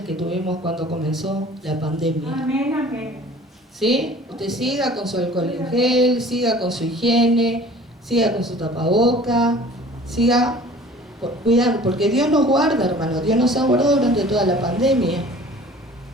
tuvimos cuando comenzó la pandemia. Amén, amén. ¿Sí? Usted siga con su alcohol en gel, siga con su higiene, siga con su tapaboca, siga cuidando, porque Dios nos guarda, hermano, Dios nos ha guardado durante toda la pandemia.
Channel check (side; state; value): both; normal; correlation 0.47